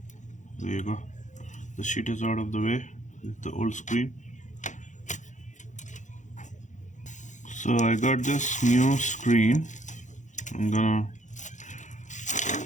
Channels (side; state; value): right; late; 0.35 ms